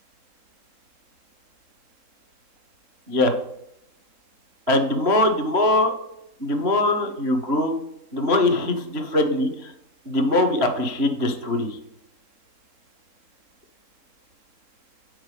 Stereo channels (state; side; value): late; left; 3.7 ms